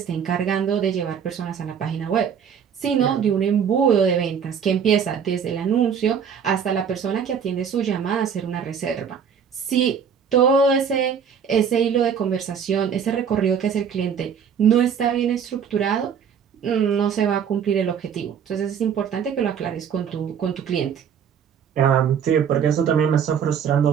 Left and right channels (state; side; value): quieter; left; 7.5 dB